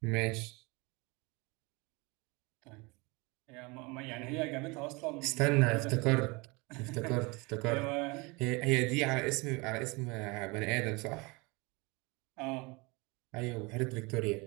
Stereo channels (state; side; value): quieter; left; 26.7 dB